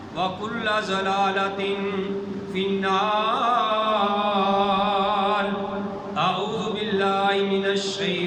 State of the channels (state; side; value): identical; both; correlation 1.00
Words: وكل ضلالة في النار. أعوذ بالله من